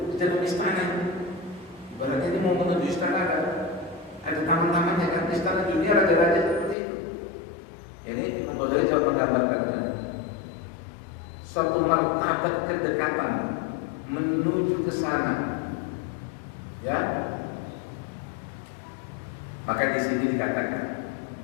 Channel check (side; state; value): right; drops out; at 6.8 s